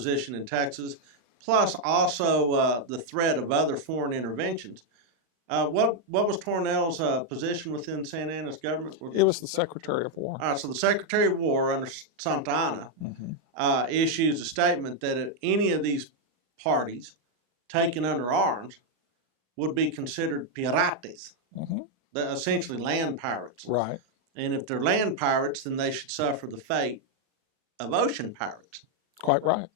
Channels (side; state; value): left; late; 39 ms